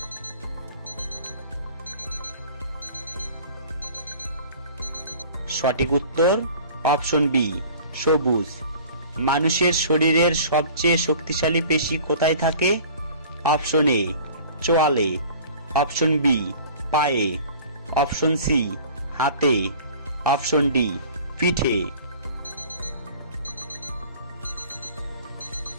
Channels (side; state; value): both; inverted; correlation -0.46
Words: সঠিক উত্তর অপশন বি সবুজ। মানুষের শরীরের সবচেয়ে শক্তিশালী পেশি কোথায় থাকে? অপশন এ চোয়ালে, অপশন বি পায়ে, অপশন সি হাতে, অপশন ডি পিঠে।